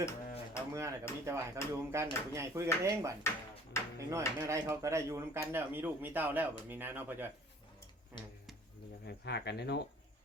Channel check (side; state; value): both; normal; correlation 0.52